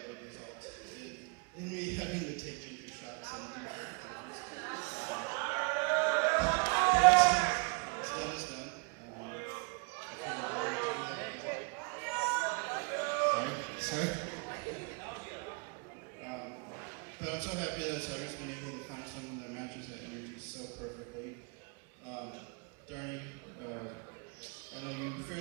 would result in me having to take ginger shots and do hard punches. What's done is done. Sorry. But I'm so happy that Sagar's been able to find someone that matches that energy so perfectly. Dharini, I know you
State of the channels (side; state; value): left; quieter; 34.7 dB